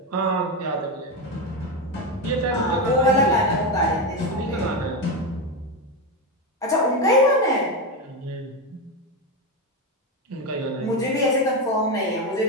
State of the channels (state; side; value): normal; both; correlation 0.13